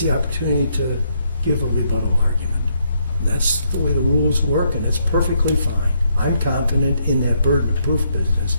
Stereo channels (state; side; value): inverted; both; correlation -0.74